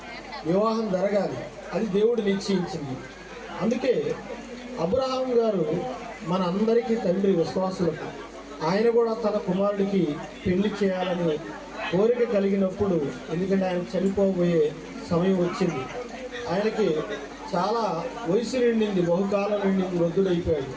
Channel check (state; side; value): identical; both; correlation 1.00